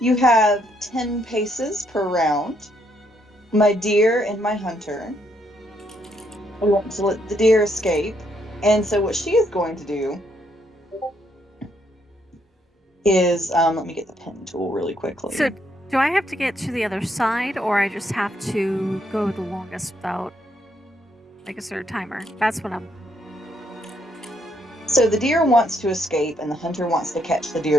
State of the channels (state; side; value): normal; both; correlation 0.74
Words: have 10 paces per round. My deer and my hunter. I want to let the deer escape. And so what she is going to do is, let me get the pen tool really quickly. So, do I have to get to the other side, or I just have to go the longest without, like, a certain timer? That's what I'm... So the deer wants to escape, and the hunter wants to catch the deer